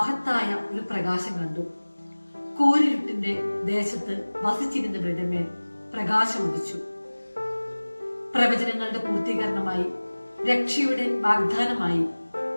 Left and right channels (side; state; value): both; inverted; correlation -1.00